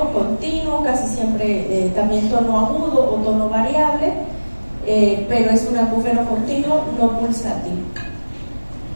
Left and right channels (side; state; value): both; inverted; correlation -1.00